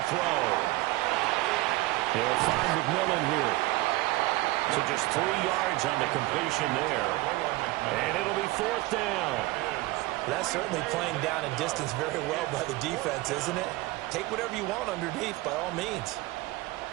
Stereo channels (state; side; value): quieter; left; 19.8 dB